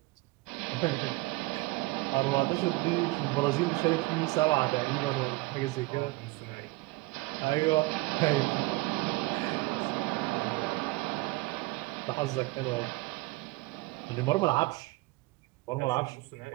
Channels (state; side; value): quieter; left; 22.0 dB